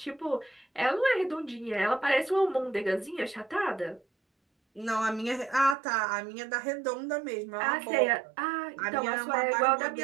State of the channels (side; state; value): left; drops out; at 5.8 s